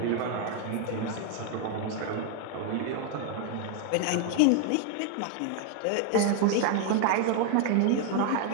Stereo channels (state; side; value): different; both; correlation 0.00